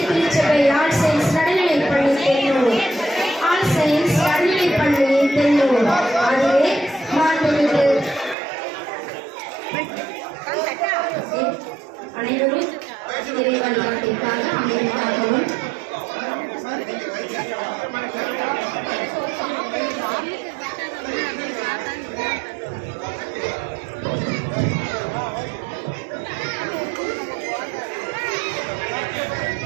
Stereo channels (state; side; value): drops out; left; at 8.3 s